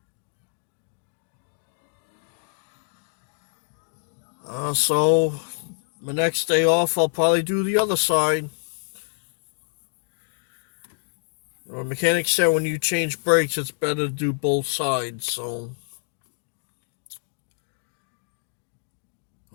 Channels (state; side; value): silent; right; digital silence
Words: So my next day off, I'll probably do the other side. The mechanic said when you change brakes, it's better to do both sides, so